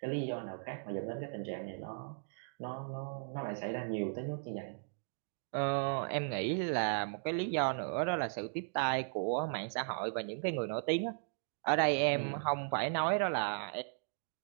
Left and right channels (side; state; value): left; silent; digital silence